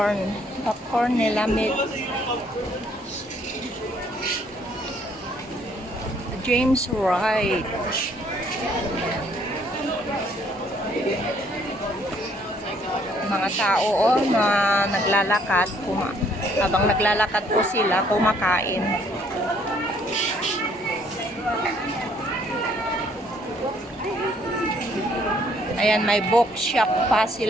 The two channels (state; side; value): normal; both; correlation 0.64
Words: Popcorn nila meat. James Wright. Mga tao, oh, na naglalakad. Habang naglalakad po sila, kumakain. Ayan, may bookshop pa